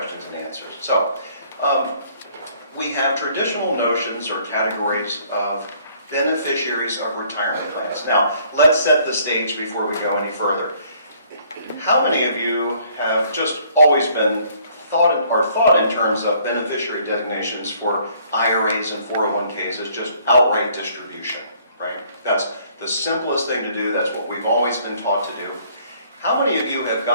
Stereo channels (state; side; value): inverted; both; correlation -0.61